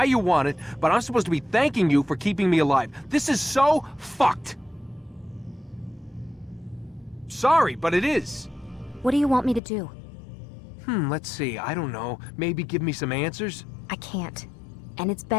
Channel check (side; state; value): right; drops out; at 9.6 s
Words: you want it, but I'm supposed to be thanking you for keeping me alive. This is so fucked. Sorry, but it is. What do you want me to do? Let's see, I don't know. Maybe give me some answers? I can't. And it's